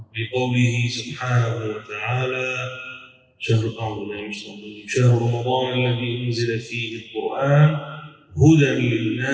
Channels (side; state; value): both; identical; correlation 1.00